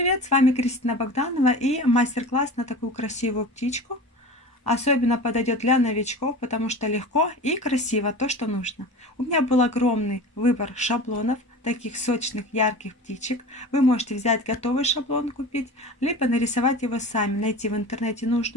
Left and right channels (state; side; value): normal; both; correlation 0.34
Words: С вами Кристина Богданова и мастер-класс на такую красивую птичку. Особенно подойдет для новичков, потому что легко и красиво то, что нужно. У меня был огромный выбор шаблонов, таких сочных, ярких птичек. Вы можете взять готовый шаблон купить, либо нарисовать его сами, найти в интернете